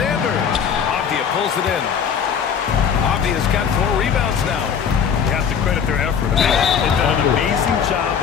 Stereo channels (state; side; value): quieter; right; 7.4 dB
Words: Avdia pulls it in. Avdia's got 4 rebounds now. You have to credit their effort. They've done an amazing job